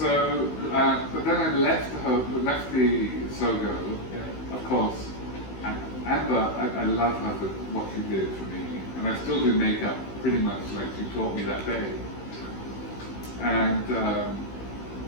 but then I left the Sogo, of course. Amber, I love her for what she did for me. And I still do makeup pretty much like she taught me that day. And,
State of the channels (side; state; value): right; late; 16 ms